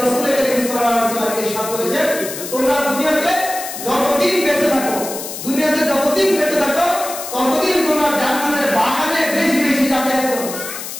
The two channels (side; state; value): left; noise; hiss, 8 dB below the sound